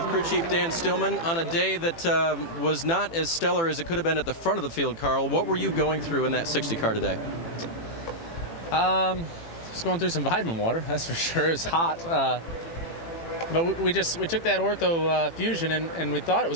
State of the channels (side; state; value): right; late; 18 ms